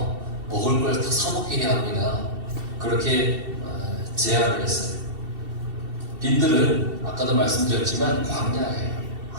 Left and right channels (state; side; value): late; left; 2.7 ms